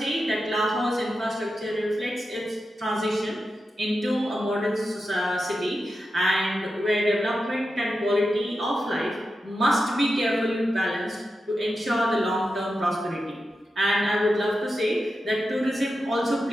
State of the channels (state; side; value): normal; both; correlation 0.90